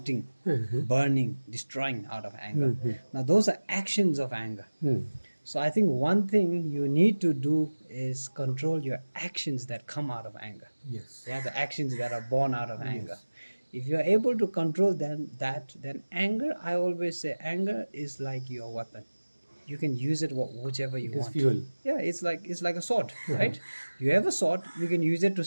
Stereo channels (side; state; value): both; inverted; correlation -1.00